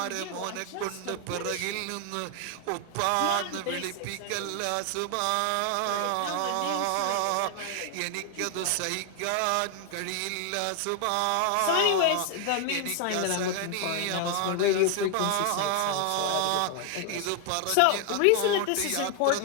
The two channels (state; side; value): different; both; correlation 0.00